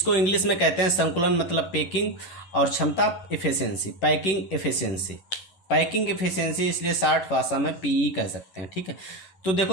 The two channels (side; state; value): right; late; 10 ms